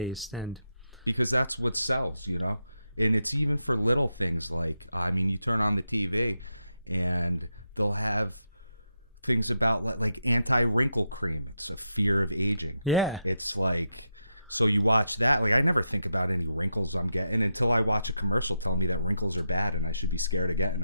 and because that's what sells, And it's even for little things like you turn on the TV, and they'll have things about like anti-wrinkle cream. It's a fear of aging. Yeah. It's like, so you watch that. Like I never think about any wrinkles I'm getting until I watch a commercial telling me that wrinkles are bad and I should be scared of getting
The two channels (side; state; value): both; inverted; correlation -0.85